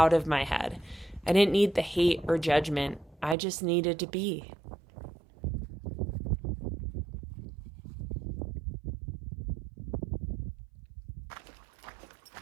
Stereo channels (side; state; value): left; drops out; at 3.4 s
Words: of my head. I didn't need the hate or judgment. I just needed to be.